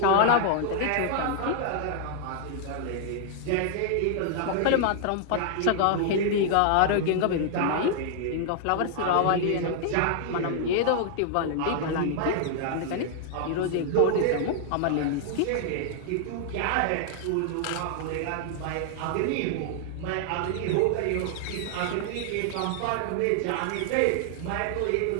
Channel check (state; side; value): different; both; correlation -0.01